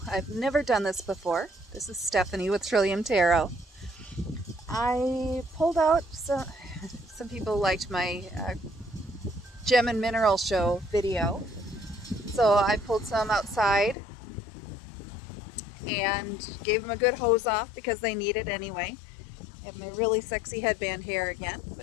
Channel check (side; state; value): right; drops out; at 14.0 s